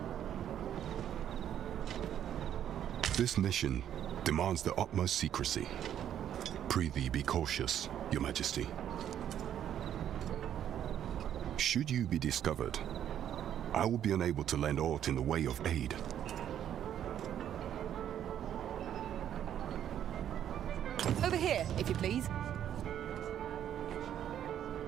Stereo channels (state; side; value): quieter; left; 10.2 dB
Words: This mission demands the utmost secrecy. Prithee be cautious, your Majesty. Should you be discovered, I will be unable to lend aught in the way of aid. Over here, if you please.